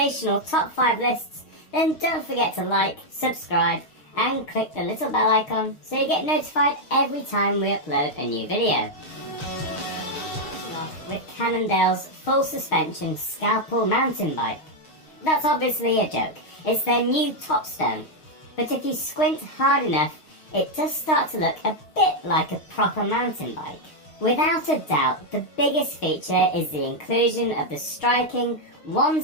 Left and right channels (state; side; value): late; right; 6.4 ms